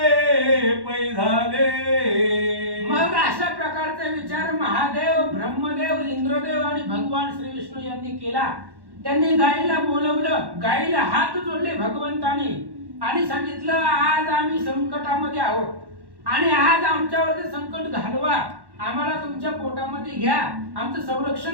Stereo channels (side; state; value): left; late; 1.1 ms